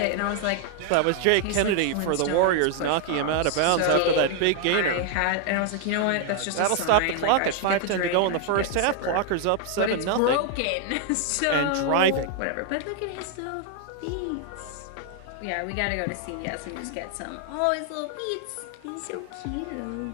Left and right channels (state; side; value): different; both; correlation 0.00